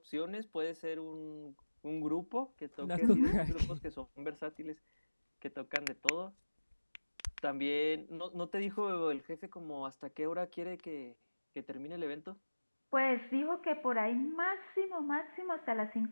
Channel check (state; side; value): inverted; both; correlation -1.00